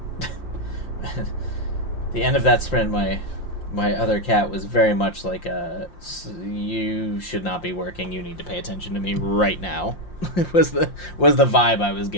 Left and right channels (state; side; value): late; right; 5.7 ms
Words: The end of that sprint, my other cat was very much like you should not be working. You need to pay attention to me right now. It was the vibe I was